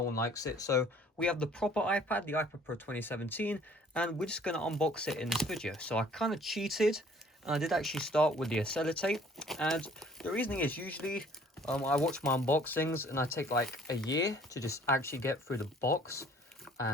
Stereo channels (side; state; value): both; normal; correlation 0.55